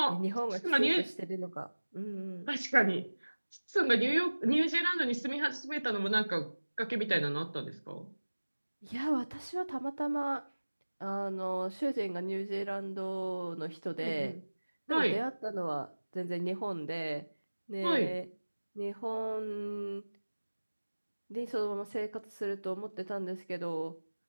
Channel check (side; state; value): both; inverted; correlation -1.00